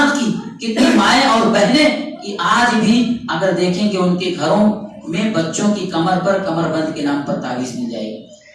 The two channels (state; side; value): identical; both; correlation 1.00